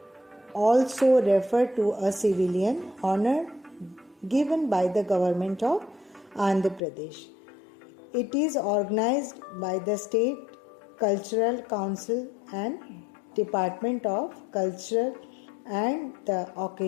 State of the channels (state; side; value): drops out; right; at 6.8 s